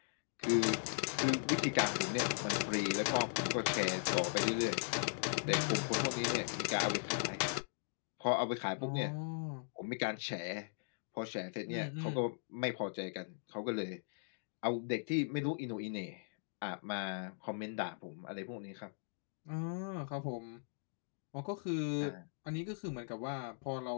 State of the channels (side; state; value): right; silent; digital silence